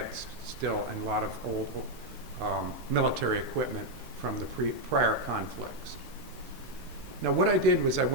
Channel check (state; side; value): normal; both; correlation 0.02